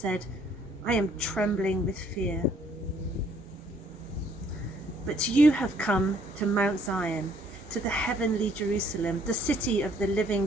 I am trembling with fear. But you have come to Mount Zion, to the heavenly Jerusalem, the city of the living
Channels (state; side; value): normal; both; correlation 0.64